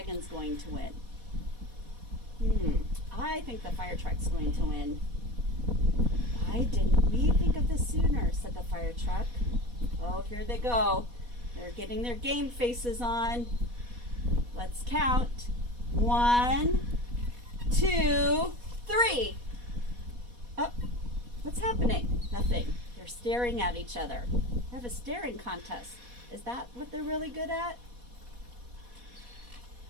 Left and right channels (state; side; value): late; left; 4.1 ms